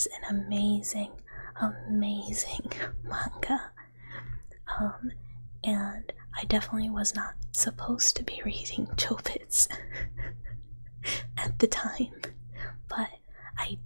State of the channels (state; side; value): inverted; both; correlation -1.00